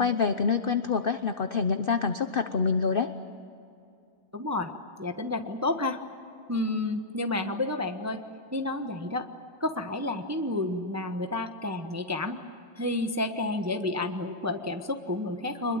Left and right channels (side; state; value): right; quieter; 3.2 dB